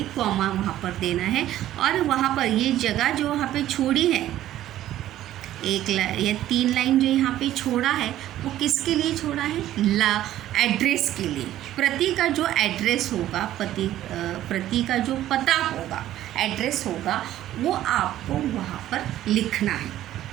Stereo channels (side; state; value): left; quieter; 13.2 dB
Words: कॉमा वहाँ पर देना है। और वहाँ पर ये जगह जो वहाँ पे छोड़ी है, एक या 3 लाइन जो यहाँ पे छोड़ा है, वो किसके लिए छोड़ा है, एड्रेस के लिए। प्रति का जो एड्रेस होगा, प्रति का जो पता होगा, एड्रेस होगा, वो आपको वहाँ पर लिखना है।